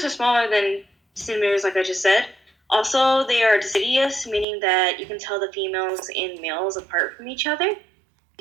are smaller than centimeters, like I just said. Also, they are deciduous, meaning that you can tell the females and males apart from each other,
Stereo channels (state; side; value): drops out; left; at 4.5 s